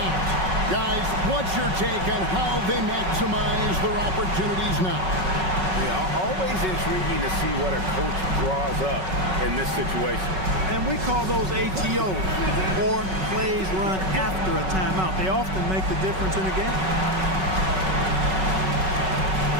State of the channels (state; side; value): late; left; 5.3 ms